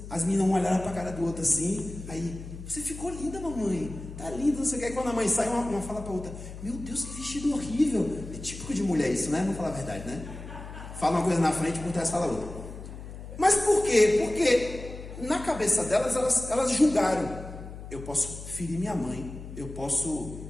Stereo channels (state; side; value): noise; left; hum, 12 dB below the sound